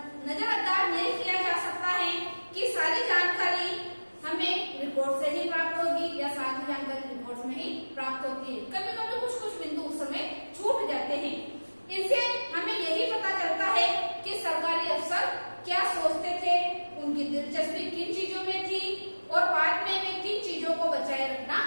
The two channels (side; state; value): both; inverted; correlation -1.00